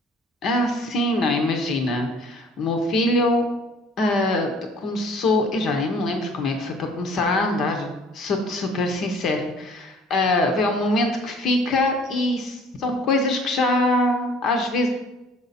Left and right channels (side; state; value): both; normal; correlation 0.53